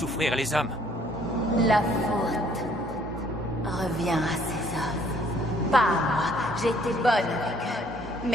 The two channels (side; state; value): both; normal; correlation 0.62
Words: les hommes. La faute revient à ces hommes. Pas à moi. J'ai été bonne avec eux.